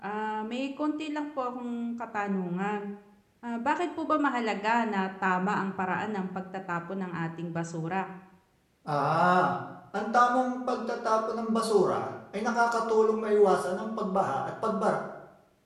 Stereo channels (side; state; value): both; identical; correlation 1.00